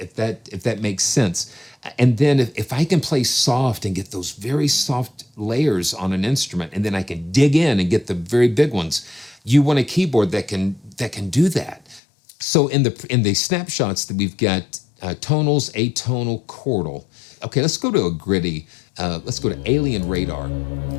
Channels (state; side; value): drops out; right; at 12.0 s